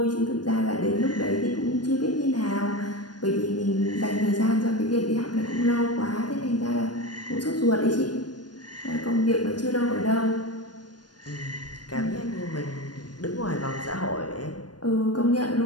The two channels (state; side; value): late; right; 0.70 ms